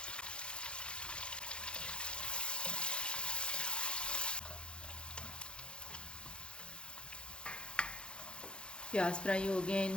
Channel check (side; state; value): right; late; 0.054 ms